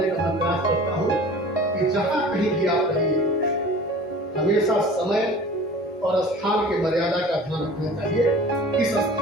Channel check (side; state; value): both; normal; correlation 0.42